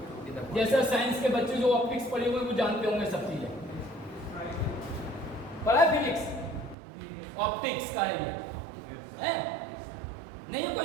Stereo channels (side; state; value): left; drops out; at 6.8 s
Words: जैसे साइंस के बच्चे जो ऑप्टिक्स पढ़े हुए वो जानते होंगे सब चीजें। पढ़ा फिजिक्स, ऑप्टिक्स का है ये, है नहीं है